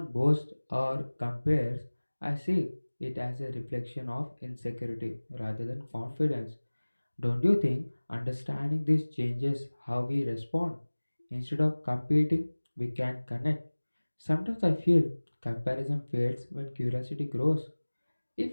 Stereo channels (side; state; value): both; inverted; correlation -1.00